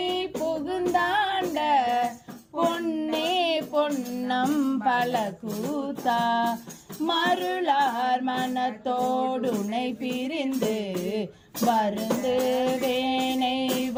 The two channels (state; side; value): identical; both; correlation 1.00